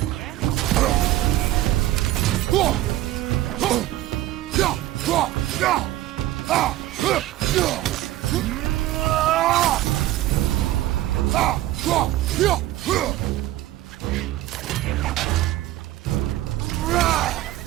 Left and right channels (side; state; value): left; quieter; 15.0 dB